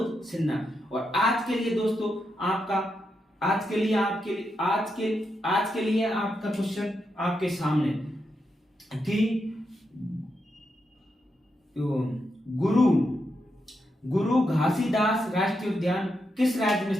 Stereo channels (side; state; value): both; normal; correlation 0.84